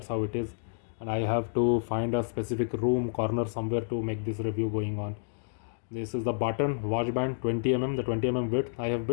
how it is. And I have to find a specific room corner somewhere to make this review going on. This is the Button watch band, 20 the 20 width. I have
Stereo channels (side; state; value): right; silent; digital silence